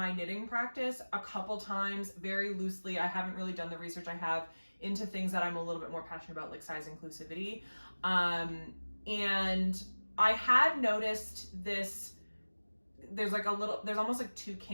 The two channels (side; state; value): both; inverted; correlation -1.00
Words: knitting practice a couple times very loosely. I haven't really done the research I have into things that I'm a little bit more passionate about, like size inclusivity. And I had noticed this, there's almost like 2